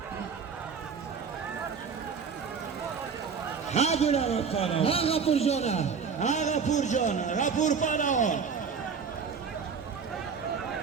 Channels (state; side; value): quieter; left; 6.0 dB